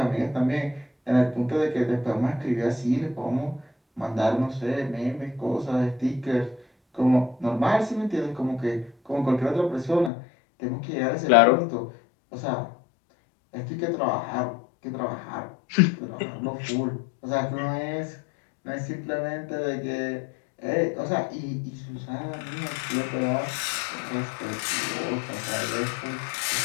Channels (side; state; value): right; drops out; at 10.1 s